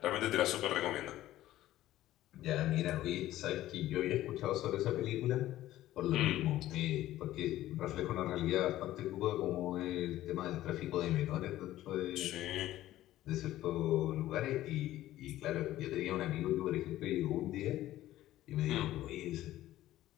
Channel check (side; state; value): right; quieter; 14.5 dB